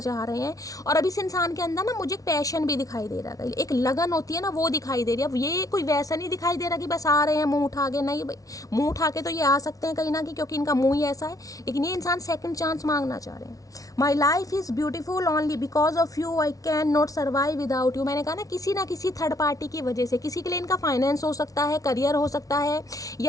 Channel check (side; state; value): right; late; 0.18 ms